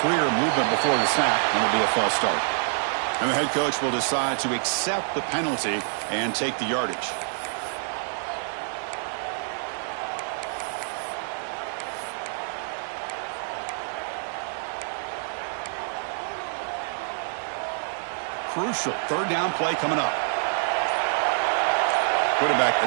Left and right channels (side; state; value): left; silent; digital silence